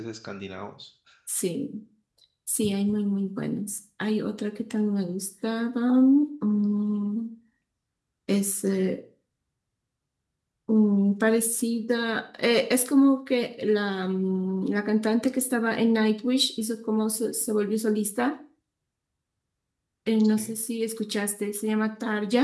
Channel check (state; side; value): identical; both; correlation 1.00